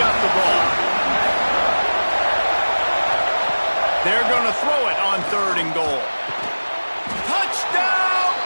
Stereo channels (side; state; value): both; inverted; correlation -1.00